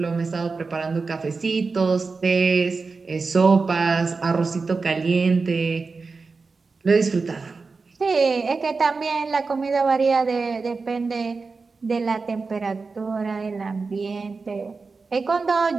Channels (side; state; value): left; quieter; 4.3 dB